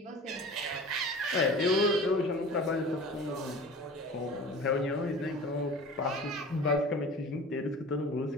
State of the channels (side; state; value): both; normal; correlation 0.39